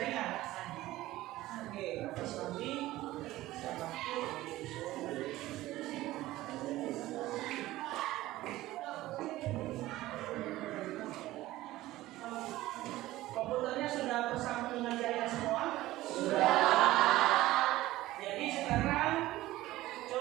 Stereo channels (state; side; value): quieter; left; 16.6 dB